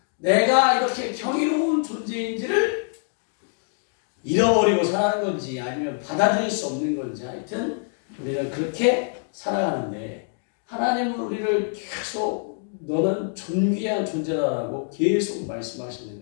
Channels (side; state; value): right; silent; digital silence